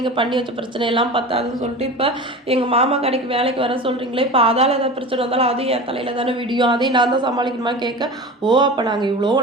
பண்ணி வச்ச பிரச்சனையெல்லாம் பத்தாதுன்னு சொல்லிட்டு இப்போ எங்கள் மாமா கடைக்கு வேலைக்கு வர சொல்கிறீங்களே, இப்போ அதால் ஏதாவது பிரச்சனை வந்தாலும் அதையும் என் தலையில் தானே விடியும், அதையும் நான் தான் சமாளிக்கணுமா கேட்க, ஓ அப்போ நாங்கள் இவ்வளோ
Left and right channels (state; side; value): normal; both; correlation 0.32